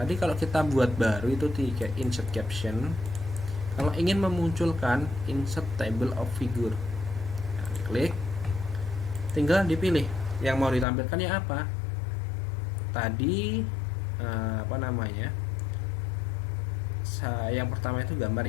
kalau kita buat baru itu di insert caption, kalau ingin memunculkan insert table of figure, nah, klik, tinggal dipilih yang mau ditampilkan ya apa. Tadi apa namanya, yang pertama itu gambar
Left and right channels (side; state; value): right; drops out; at 10.9 s